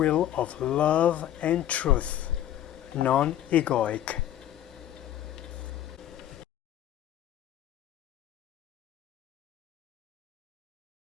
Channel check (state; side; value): quieter; right; 11.8 dB